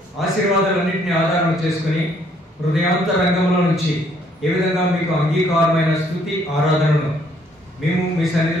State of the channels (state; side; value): normal; both; correlation 0.66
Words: ఆశీర్వాదాలన్నింటినీ ఆధారం చేసుకుని హృదయాంతరంగంలో నుంచి ఏ విధంగా మీకు అంగీకారమైన స్తుతి ఆరాధనను మేము మీ